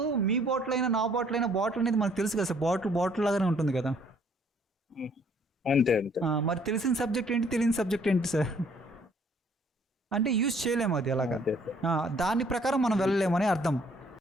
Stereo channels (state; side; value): normal; both; correlation 0.62